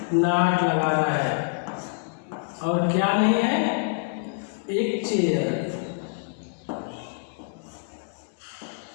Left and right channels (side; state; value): right; silent; digital silence